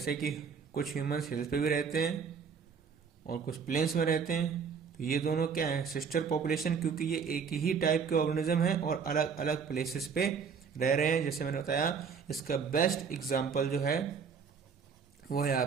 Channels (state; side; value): quieter; left; 6.1 dB